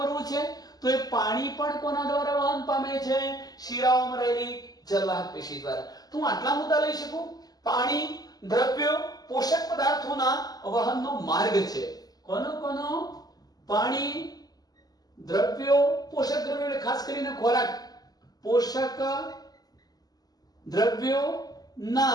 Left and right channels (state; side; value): late; right; 0.18 ms